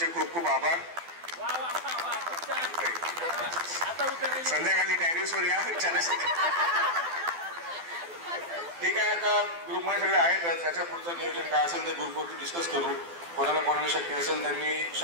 खूप खूप आभार. संध्याकाळी टेरेसवर या ठीक आहे. आता ग्रुपमध्ये सगळे आहेत त्याच्या पुढचं नियोजन काय असेल ते ग्रुपवरती डिस्कस करू. कोणाला शक्य असेल त्यांनी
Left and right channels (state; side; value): late; left; 12 ms